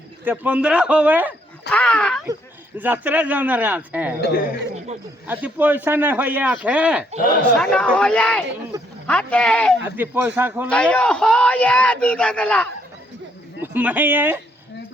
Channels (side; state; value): both; normal; correlation 0.70